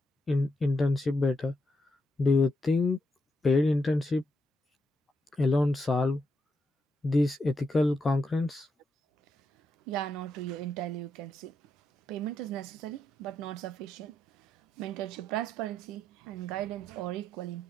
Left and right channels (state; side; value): normal; both; correlation 0.82